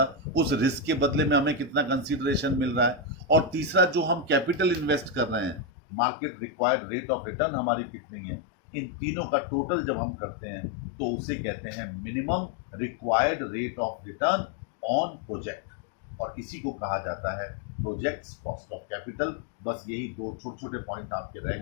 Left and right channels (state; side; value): drops out; right; at 5.6 s